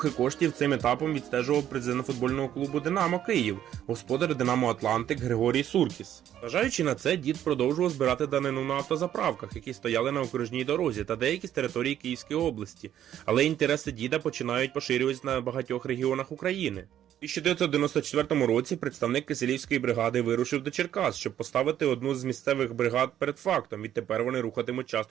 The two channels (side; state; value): left; quieter; 11.0 dB